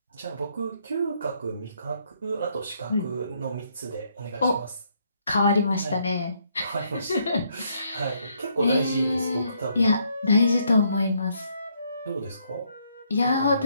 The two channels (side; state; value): both; inverted; correlation -0.71